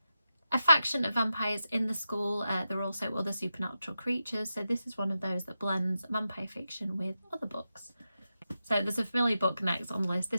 faction of vampires in the school. There are also other supernatural creatures, so this is one of those that blends vampire fiction with other books. So there's a familiar book next on the list.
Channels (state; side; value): inverted; both; correlation -0.89